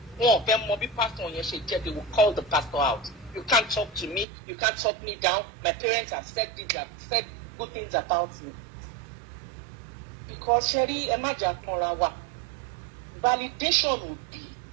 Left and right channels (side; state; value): left; drops out; at 4.2 s